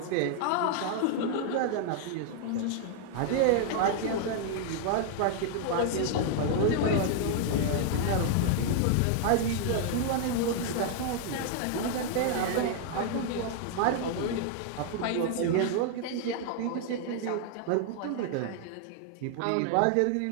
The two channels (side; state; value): both; different; correlation 0.00